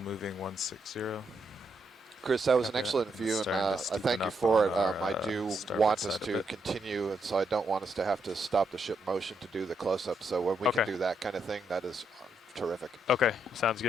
160. Chris, that was an excellent view, and I thank you for it. I do want us to continue, and so I don't want us to have to stop the ship motion to do the close-up. So when we can do that kind of thing, that is terrific. Okay, sounds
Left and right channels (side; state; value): both; normal; correlation 0.79